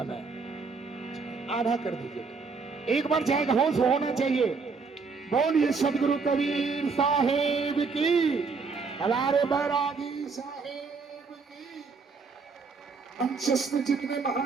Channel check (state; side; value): quieter; left; 4.7 dB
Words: है, आधा कर दीजिए। एक बार जाएगा, होश होना चाहिए। बोलिए सदगुरु कबीर साहेब की, हलारे बैरागी साहेब की। मंचस्थ जितने